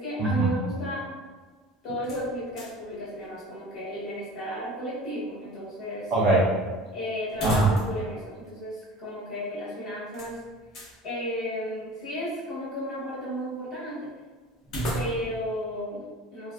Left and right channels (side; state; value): both; normal; correlation 0.41